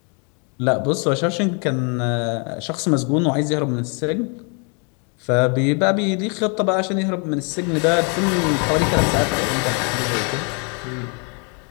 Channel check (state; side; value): quieter; right; 36.7 dB